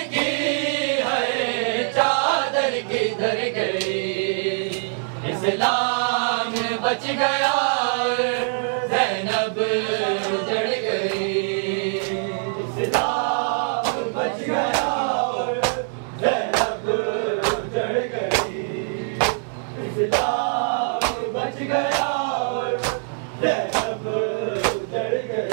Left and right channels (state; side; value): silent; left; 63 dB below the other